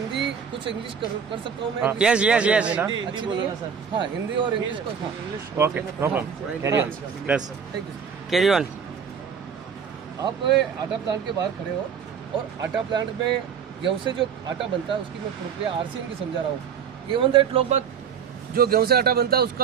कुछ इंग्लिश कर सकता हूँ मैं। हाँ। Yes yes yes. अच्छी नहीं है सर। हाँ हिंदी और इंग्लिश को हाँ okay no problem carry on plus thank you. Carry on. आप आटा प्लांट के बाहर खड़े हो और आटा प्लांट में गेहूं से जो आटा बनता है उसकी मैं प्रक्रिया आरसीएम की समझा रहा हूँ। इवन दैट लोग बात जो गेहूं से आटा बनता है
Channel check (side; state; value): left; quieter; 7.1 dB